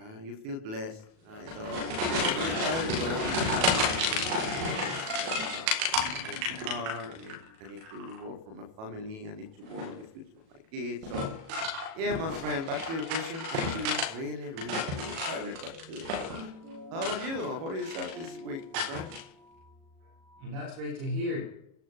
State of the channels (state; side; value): late; left; 37 ms